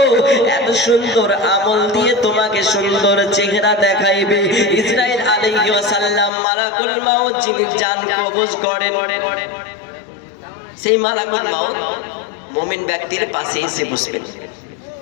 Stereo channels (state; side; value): drops out; right; at 6.3 s